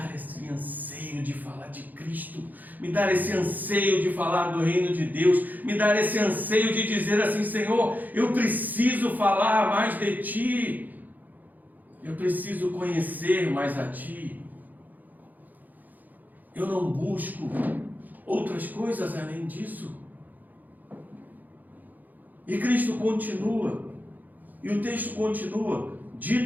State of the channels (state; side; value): late; left; 0.083 ms